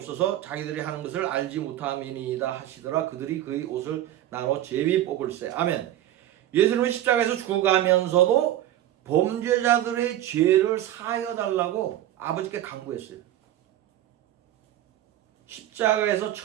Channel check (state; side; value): quieter; left; 13.0 dB